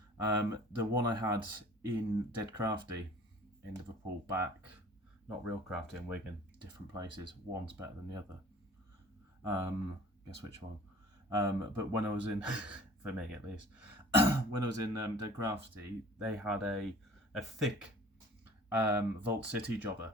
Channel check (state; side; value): normal; both; correlation 0.48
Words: The one I had in Dead Crafty in Liverpool back, not Real Crafty in Wigan, different places. One's better than the other. Guess which one? But when I was in, for me at least, when I was in Dead Crafty, they had a thick Vault City jobber,